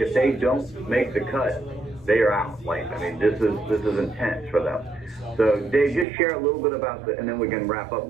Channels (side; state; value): left; drops out; at 6.1 s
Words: they don't make the cut, they are out. Like, I mean, this is intense for them. So Dave, just share a little bit about and then we can wrap up and